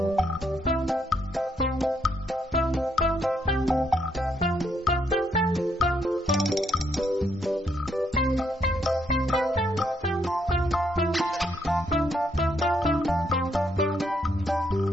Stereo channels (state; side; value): normal; both; correlation 0.74